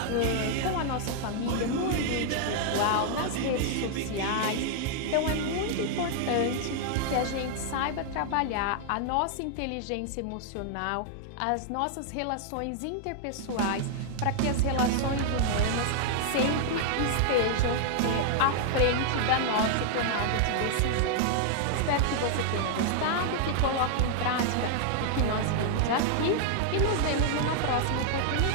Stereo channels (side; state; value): both; different; correlation 0.00